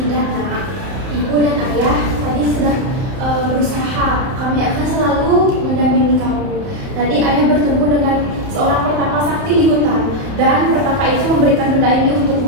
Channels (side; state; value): left; late; 31 ms